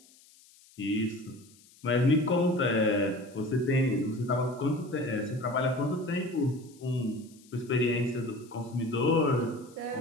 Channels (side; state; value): left; noise; hiss, 26 dB below the sound